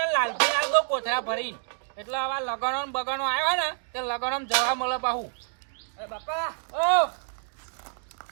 લાલજી લાલ દો કોથળા ભરીને એટલે આવા લગણો ને બગણો આવ્યો ને તે લગણો જવા મળે પાહુ અરે બાપા ઓ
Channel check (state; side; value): silent; left; 60 dB below the other